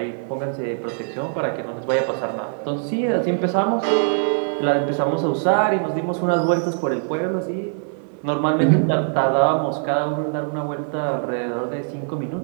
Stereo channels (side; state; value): left; silent; 58 dB below the other